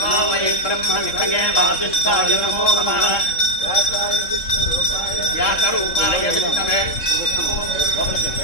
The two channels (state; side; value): late; right; 3.7 ms